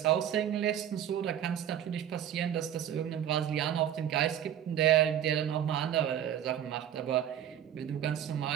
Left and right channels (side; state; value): left; quieter; 10.2 dB